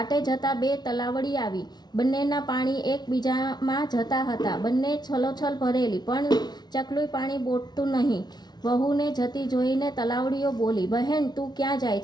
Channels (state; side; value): late; right; 0.20 ms